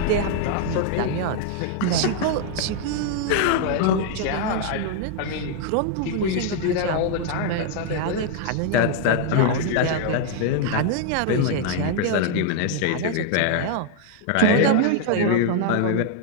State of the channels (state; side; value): different; both; correlation 0.00